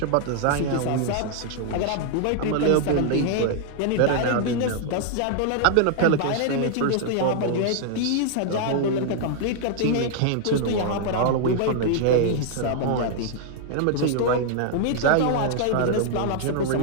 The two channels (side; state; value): both; different; correlation -0.01